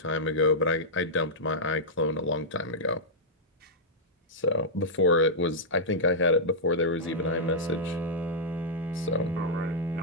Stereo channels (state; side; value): normal; both; correlation -0.10